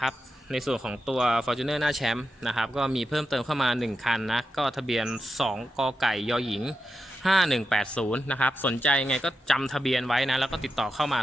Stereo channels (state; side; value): normal; both; correlation 0.88